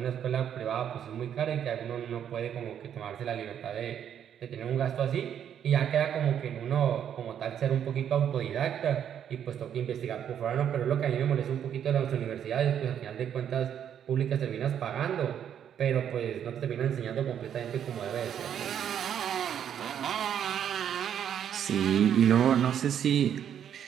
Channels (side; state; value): left; quieter; 9.2 dB